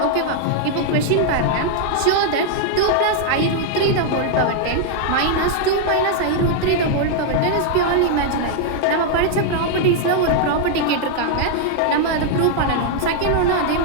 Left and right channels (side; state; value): both; different; correlation -0.01